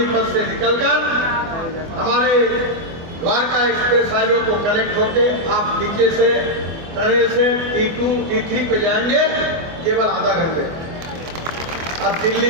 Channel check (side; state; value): left; late; 24 ms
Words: से निकलकर हमारे द्वारका एक्सप्रेस हाईवे को कनेक्ट होके आप नीचे से टनल से T2 T3 पे जाएंगे केवल आधा घंटे। अब दिल्ली